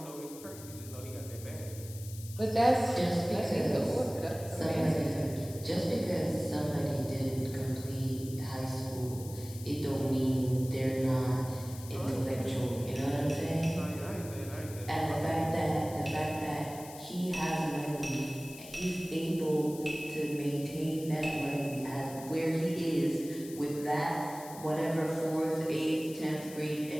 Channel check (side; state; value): left; noise; hiss, 16 dB below the sound